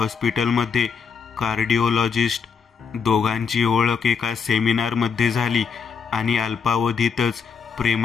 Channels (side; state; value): right; quieter; 6.1 dB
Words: कार्डिओलॉजिस्ट. दोघांची ओळख एका सेमिनारमध्ये झाली आणि अल्पावधीतच